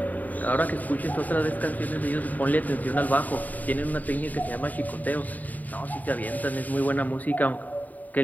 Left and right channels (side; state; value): right; late; 0.079 ms